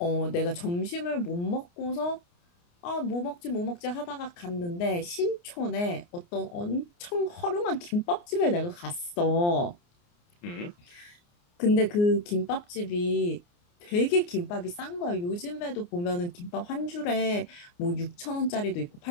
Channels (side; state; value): right; late; 29 ms